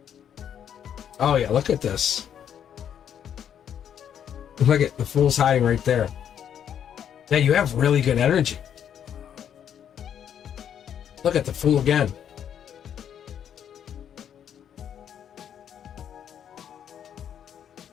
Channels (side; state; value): right; quieter; 9.1 dB